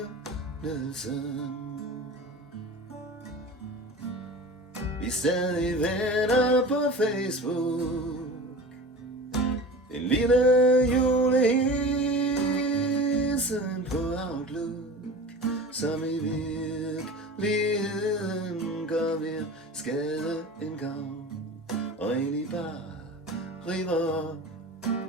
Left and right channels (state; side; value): normal; both; correlation 0.35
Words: vi er stadig venner på Facebook. En lille julehilsen på Outlook, som i virkeligheden gør mere skade end gavn, og egentlig bare river op